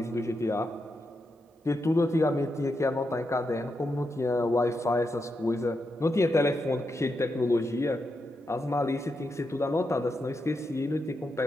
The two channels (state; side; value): normal; both; correlation 0.85